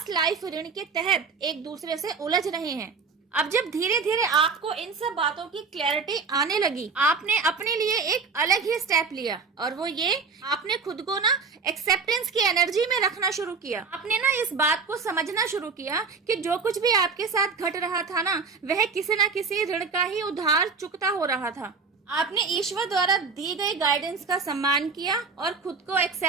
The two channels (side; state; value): left; quieter; 4.9 dB